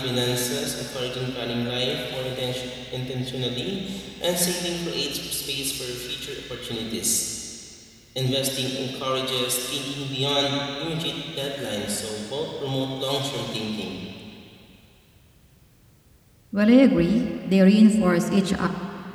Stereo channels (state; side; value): identical; both; correlation 1.00